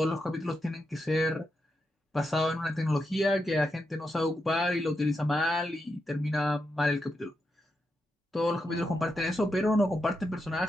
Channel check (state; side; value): normal; both; correlation 0.85